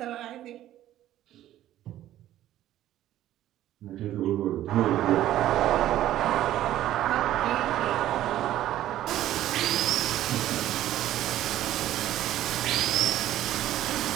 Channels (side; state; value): left; quieter; 13.2 dB